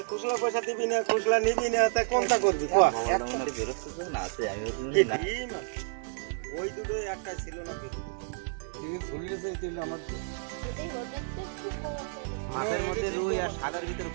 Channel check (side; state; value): left; silent; digital silence